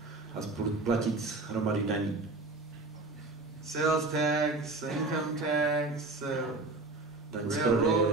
A platit hromady daní. Sales tax, income tax, daň z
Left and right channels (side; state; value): left; quieter; 3.3 dB